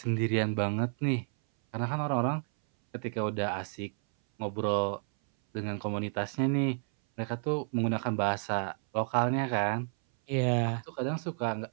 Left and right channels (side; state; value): left; silent; 57 dB below the other